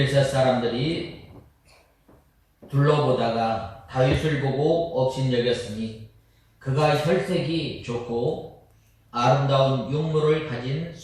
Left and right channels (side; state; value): both; identical; correlation 1.00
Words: 사람들이 둘러보다가 다윗을 보고 업신여겼으니 그가 혈색이 좋고 아름다운 용모를 가진